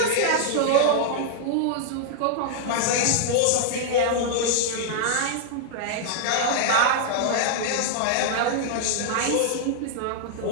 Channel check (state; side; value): different; both; correlation -0.01